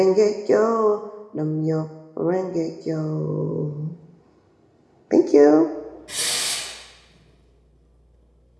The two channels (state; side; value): identical; both; correlation 1.00